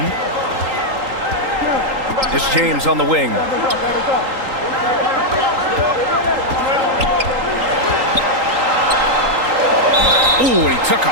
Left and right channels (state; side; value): late; left; 3.8 ms